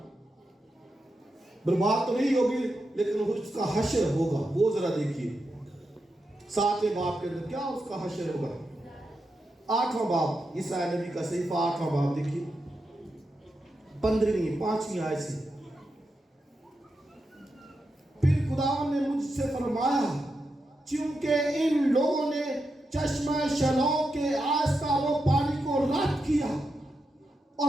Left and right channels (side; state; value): both; normal; correlation 0.87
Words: برباد تو نہیں ہوگی, لیکن اس کا حشر ہوگا. وہ ذرا دیکھیے 7ویں باب کے اندر کیا اس کا حشر ہوگا. 8واں باب, عیسیٰ نبی کا صحیفہ 8واں باب دیکھیے, 5ویں آیت سے. پھر خداوند نے مجھ سے فرمایا چونکہ ان لوگوں نے چشمہ شلوم کے آہستہ وہ پانی کو رد کیا